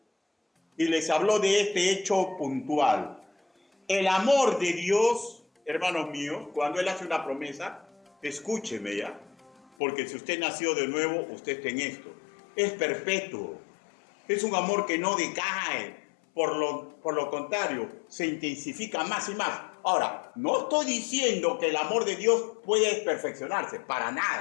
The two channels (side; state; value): right; drops out; at 9.7 s